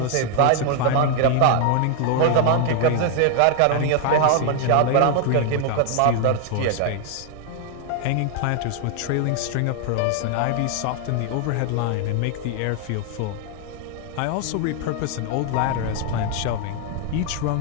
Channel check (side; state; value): both; different; correlation 0.00